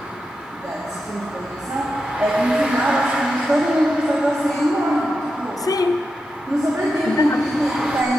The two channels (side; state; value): both; normal; correlation 0.88